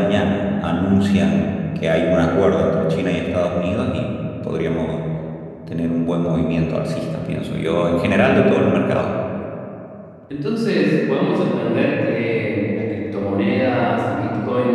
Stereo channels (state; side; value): identical; both; correlation 1.00